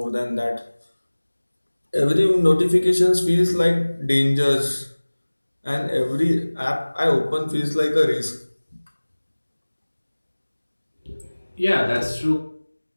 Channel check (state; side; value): inverted; both; correlation -1.00